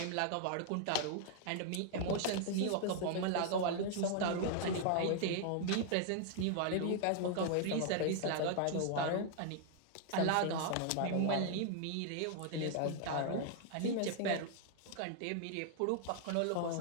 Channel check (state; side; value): different; both; correlation 0.00